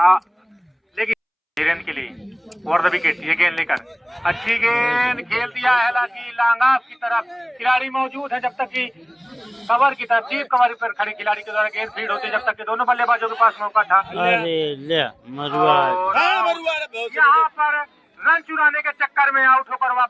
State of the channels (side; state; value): both; identical; correlation 1.00